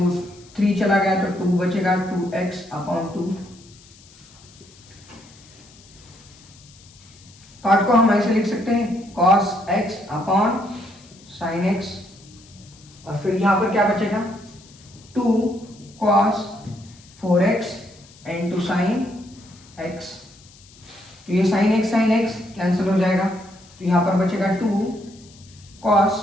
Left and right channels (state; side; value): noise; left; hiss, 24 dB below the sound